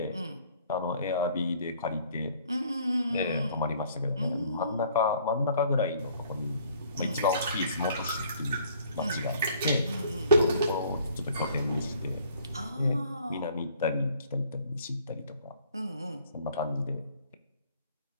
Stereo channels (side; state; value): both; inverted; correlation -0.58